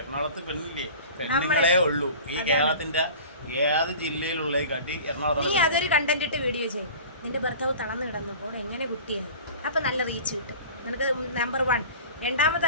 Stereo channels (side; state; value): both; inverted; correlation -0.40